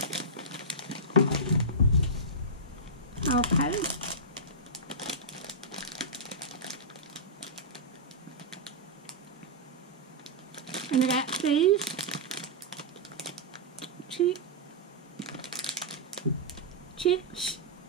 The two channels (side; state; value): both; normal; correlation -0.13